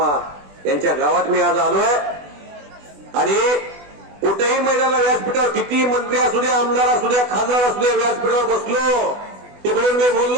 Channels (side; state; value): left; late; 20 ms